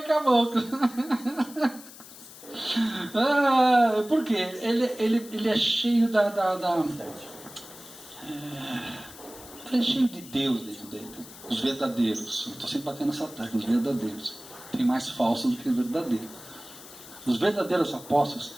com a boca. Por quê? Ele é cheio ele é cheio de Deus dentro dele. Os verdadeiros. Eu estou sempre batendo essa tecla. Os verdadeiros. Tem mais falsos do que verdadeiros. Os verdadeiros apóstolos,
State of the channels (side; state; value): left; noise; hiss, 17 dB below the sound